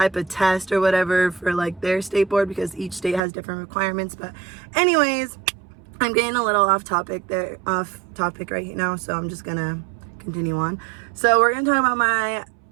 of test or whatever for like their state board because each state has different requirements. But anyways, I'm getting a little off topic right now, so I'm just gonna continue on. So we're gonna talk about my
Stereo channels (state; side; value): drops out; left; at 3.2 s